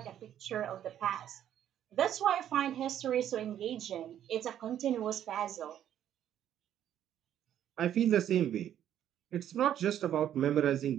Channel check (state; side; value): quieter; left; 10.7 dB